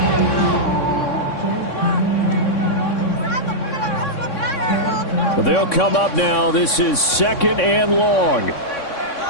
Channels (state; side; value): late; right; 3.6 ms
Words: They'll come up now. This is 2nd and long.